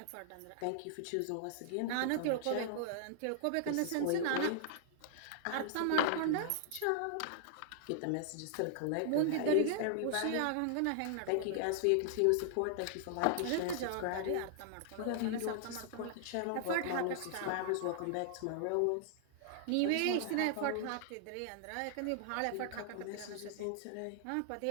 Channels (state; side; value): different; both; correlation -0.01